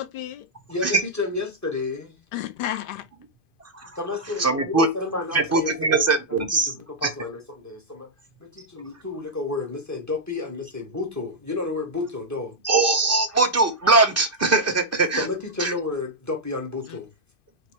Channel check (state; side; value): late; right; 2.5 ms